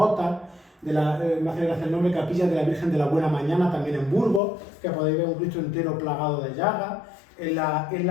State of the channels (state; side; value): drops out; right; at 4.4 s